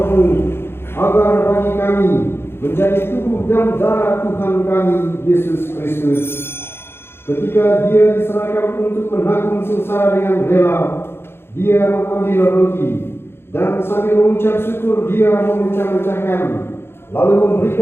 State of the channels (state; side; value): late; right; 0.11 ms